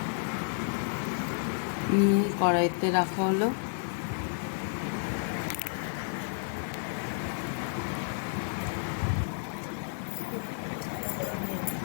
নিয়ে কড়াইতে রাখা হলো।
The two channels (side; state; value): right; silent; 57 dB below the other